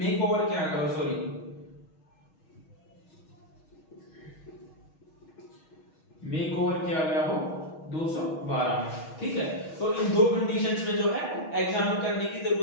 ओवर क्या करो, सॉरी मेक ओवर किया गया हो 212 में। ठीक है, तो इन दो कंडीशंस में जो है एग्जाम करने की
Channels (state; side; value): late; right; 6.3 ms